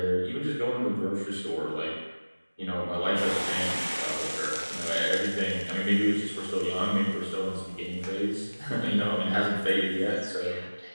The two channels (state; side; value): inverted; both; correlation -1.00